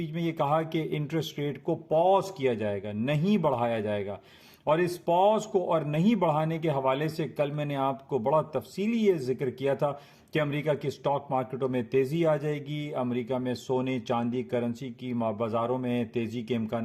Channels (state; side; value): identical; both; correlation 1.00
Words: में ये कहा कि इंटरेस्ट रेट को पॉज किया जाएगा, नहीं बढ़ाया जाएगा। और इस पॉज को और नहीं बढ़ाने के हवाले से कल मैंने आपको बड़ा तफसीली ये जिक्र किया था कि अमेरिका की स्टॉक मार्केटों में तेजी आ जाएगी, अमेरिका में सोने, चांदी, करेंसी की बाजारों में तेजी के